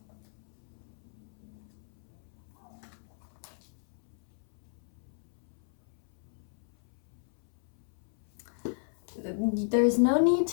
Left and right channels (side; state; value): right; silent; 56 dB below the other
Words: There's no need